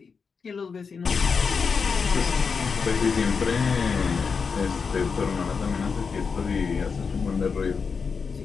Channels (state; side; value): quieter; right; 5.5 dB